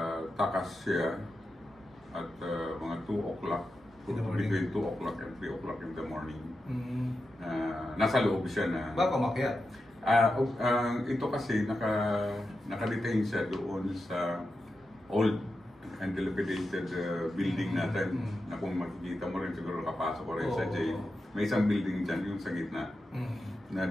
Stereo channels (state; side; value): normal; both; correlation 0.90